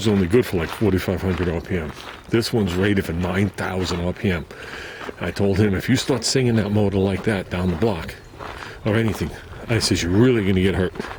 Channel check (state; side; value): identical; both; correlation 1.00